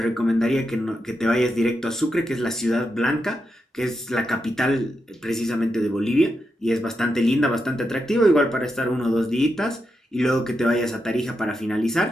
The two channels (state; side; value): normal; both; correlation 0.86